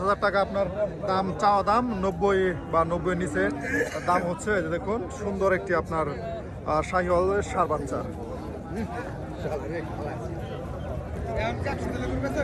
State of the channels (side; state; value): both; identical; correlation 1.00